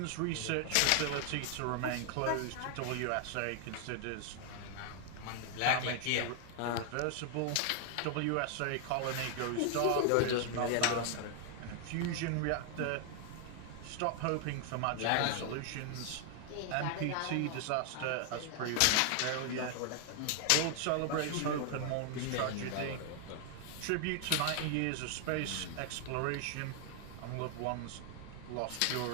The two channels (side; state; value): both; different; correlation 0.00